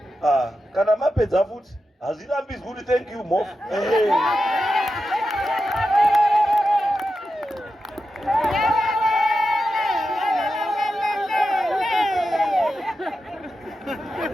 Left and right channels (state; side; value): normal; both; correlation 0.90